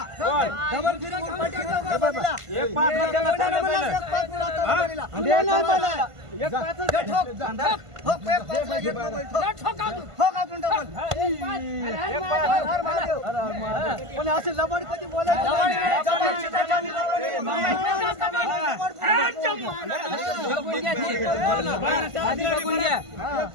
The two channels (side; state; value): left; late; 1.5 ms